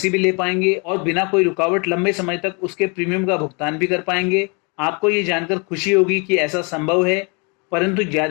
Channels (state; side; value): quieter; right; 33.0 dB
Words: भी ले पाएंगे और बिना कोई रुकावट लंबे समय तक उसके प्रीमियम का भुगतान भी कर पाएंगे। आपको ये जानकर खुशी होगी कि ऐसा संभव है, परंतु